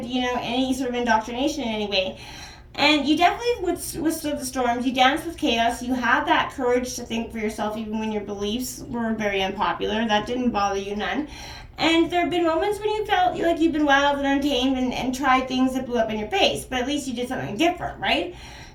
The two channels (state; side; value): identical; both; correlation 1.00